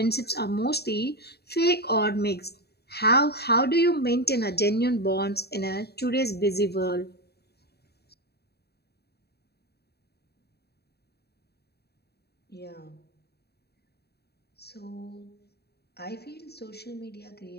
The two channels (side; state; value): right; late; 0.47 ms